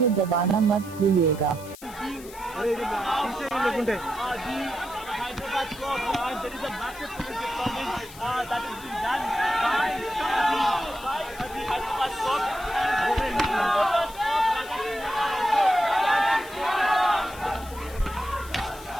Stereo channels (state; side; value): noise; left; hiss, 18 dB below the sound